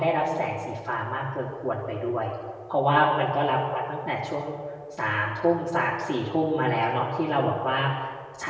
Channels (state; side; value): identical; both; correlation 1.00